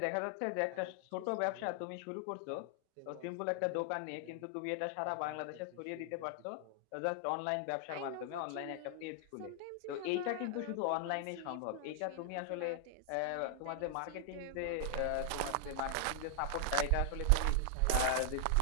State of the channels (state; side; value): different; both; correlation 0.00